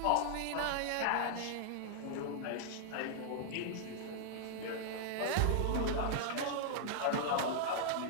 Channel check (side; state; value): both; different; correlation -0.01